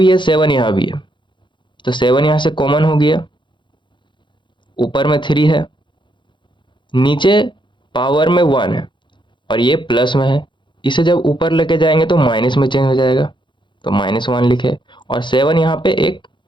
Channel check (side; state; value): right; late; 0.23 ms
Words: है, 7 यहाँ भी है, तो 7 यहाँ से कॉमन हो गया, ऊपर में 3 है, नीचे पावर में 1 है और ये प्लस में है, इसे जब ऊपर लेके जाएंगे तो माइनस में चेंज हो जाएगा, तो -1 लिखे और 7 यहाँ पे एक